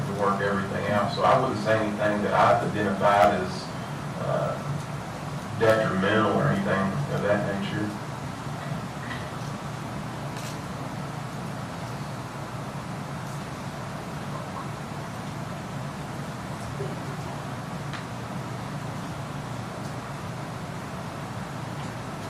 work everything out. So I wouldn't say anything that I've identified as detrimental or anything of that nature.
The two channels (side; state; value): both; identical; correlation 1.00